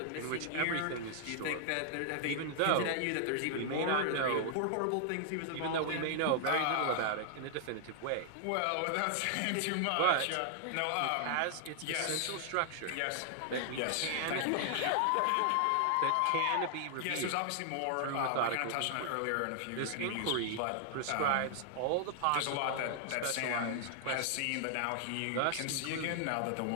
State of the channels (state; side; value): different; both; correlation -0.01